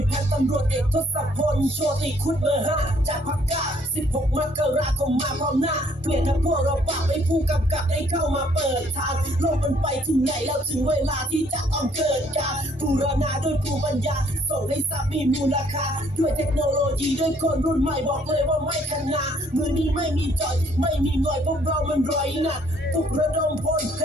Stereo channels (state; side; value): normal; both; correlation 0.64